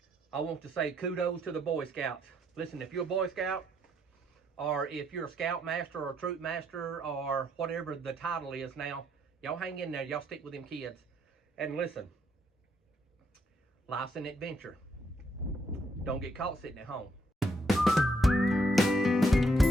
I want to say kudos to the Boy Scouts. Listen, if you're a Boy Scout, or if you're a Scout Master or a Troop Master or whatever the title is now, y'all hang in there. Y'all stick with them kids. And listen, life's an adventure. Don't get caught sitting at home.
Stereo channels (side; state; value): both; normal; correlation 0.73